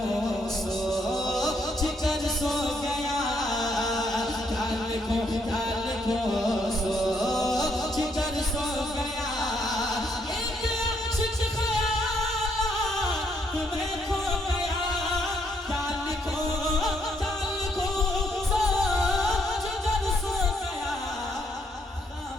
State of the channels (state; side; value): normal; both; correlation 0.73